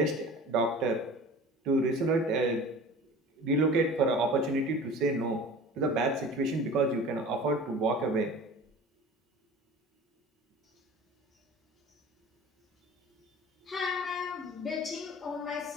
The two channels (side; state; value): both; normal; correlation 0.40